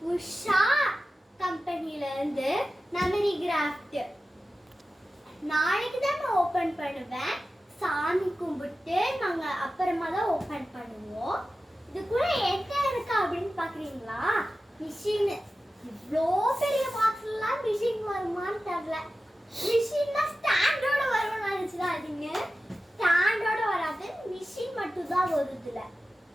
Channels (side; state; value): both; normal; correlation 0.94